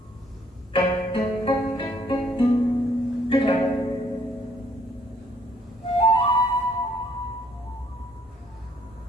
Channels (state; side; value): normal; both; correlation 0.65